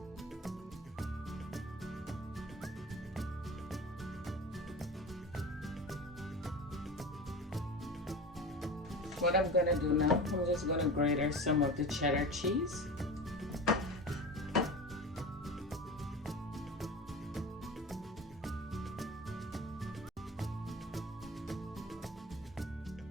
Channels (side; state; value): both; normal; correlation 0.32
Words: What I'm going to do now, I'm just going to grate some of the cheddar cheese.